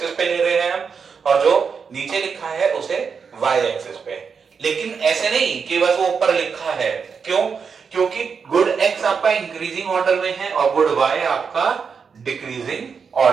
पे ले रहे हैं हम, और जो नीचे लिखा है उसे वाई एक्सिस पे। लेकिन ऐसे नहीं कि बस वो ऊपर लिखा है, क्यों? क्योंकि गुड एक्स आपका इंक्रीजिंग ऑर्डर में है और गुड वाई आपका डिक्रीजिंग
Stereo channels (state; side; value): quieter; left; 5.9 dB